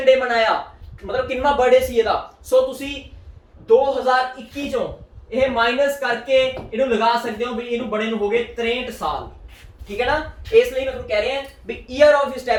ਡੇ ਮਨਾਇਆ, ਮਤਲਬ ਕਿੰਨਾ ਬਰਥਡੇ ਸੀ ਇਹਦਾ। ਸੋ ਤੁਸੀਂ 2021 ਚੋਂ ਇਹ ਮਾਈਨਸ ਕਰਕੇ ਇਹਨੂੰ ਲਗਾ ਸਕਦੇ ਹੋ ਵੀ ਇਹਨੂੰ ਬਣੇ ਨੂੰ ਹੋ ਗਏ 63 ਸਾਲ, ਠੀਕ ਹੈ ਨਾ। ਇਸ ਲਈ ਮੈਂ ਤੁਹਾਨੂੰ ਕਹਿ ਰਿਹਾ ਵੀ ਈਅਰ ਆਫ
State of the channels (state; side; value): identical; both; correlation 1.00